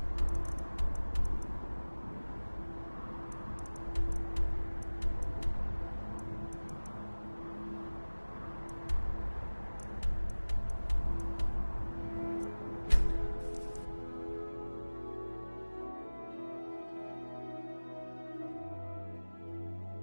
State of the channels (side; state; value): both; inverted; correlation -1.00